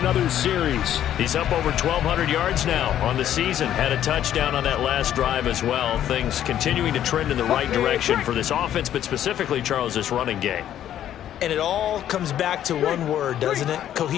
series. He's up over 1,200 yards now on the season. Had a touchdown on that last drive as well. Things continuing to trend in the right direction for this offense, but specifically, Charles, this running game. And it all comes back to one word, doesn't it?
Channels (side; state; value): right; quieter; 11.1 dB